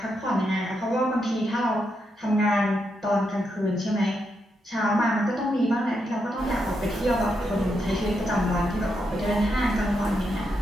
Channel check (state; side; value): normal; both; correlation 0.82